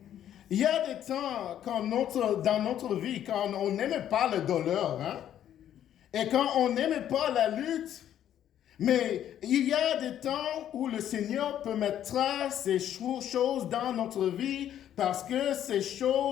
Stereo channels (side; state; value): right; quieter; 10.8 dB